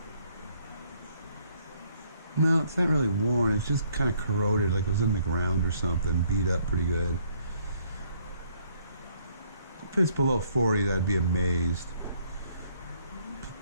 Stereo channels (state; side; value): inverted; both; correlation -0.67